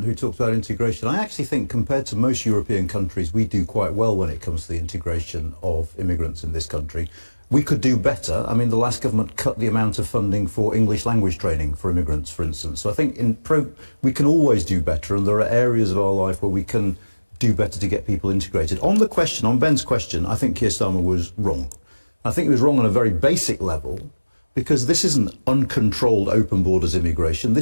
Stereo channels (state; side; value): inverted; both; correlation -1.00